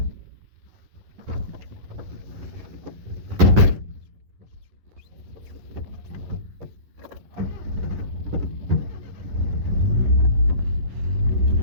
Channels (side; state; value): left; late; 11 ms